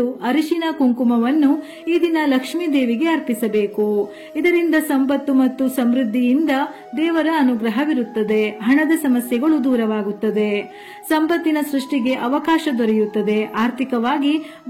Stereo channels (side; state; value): both; identical; correlation 1.00